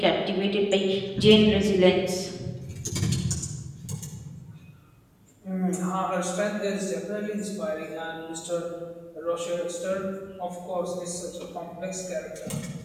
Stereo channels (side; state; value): both; identical; correlation 1.00